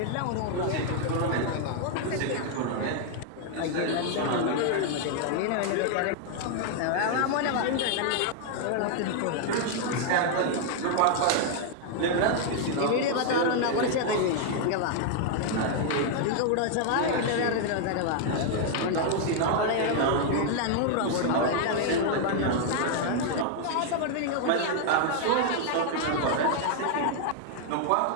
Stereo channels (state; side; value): different; both; correlation 0.00